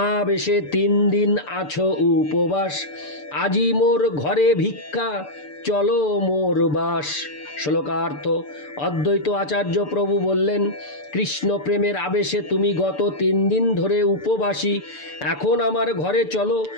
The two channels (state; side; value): late; right; 6.8 ms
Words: 3 দিন আছো উপবাস, আজি মোর ঘরে ভিক্ষা চলো মোর বাস। শ্লোকার্থ। অদ্বৈত আচার্য প্রভু বললেন, কৃষ্ণ প্রেমের আবেশে তুমি গত 3 দিন ধরে উপবাসী, এখন আমার ঘরে চলো